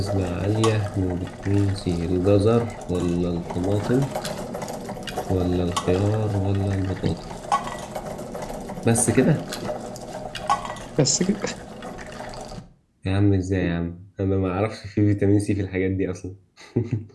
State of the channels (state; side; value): identical; both; correlation 1.00